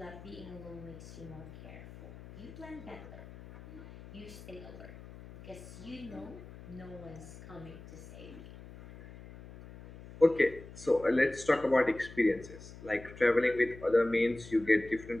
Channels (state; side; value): noise; left; hum, 16 dB below the sound